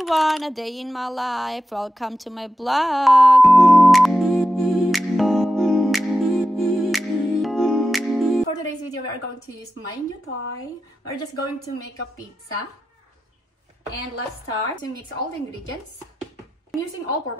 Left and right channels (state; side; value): normal; both; correlation 0.91